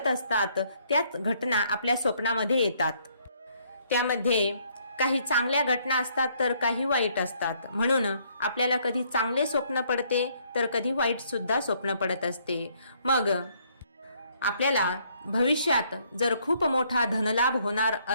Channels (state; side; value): inverted; both; correlation -0.67